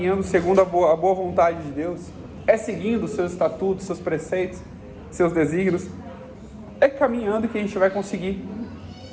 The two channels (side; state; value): both; identical; correlation 1.00